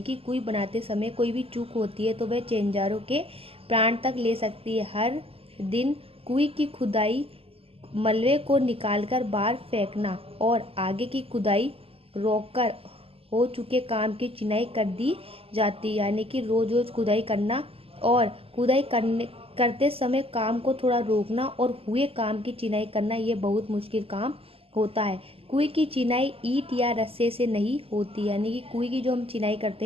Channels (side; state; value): left; late; 0.28 ms